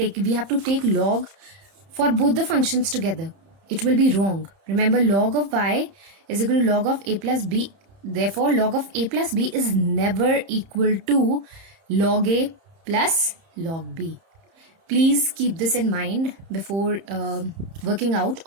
have to take log for both the functions together. It will be wrong. Remember, log of y is equal to log of a plus b. Therefore, log of a plus b is never equal to log a plus log b. Please keep this in mind before working out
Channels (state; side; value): late; left; 30 ms